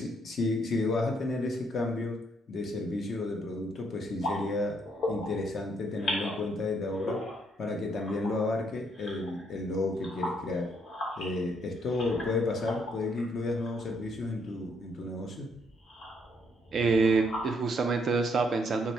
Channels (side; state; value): both; normal; correlation 0.72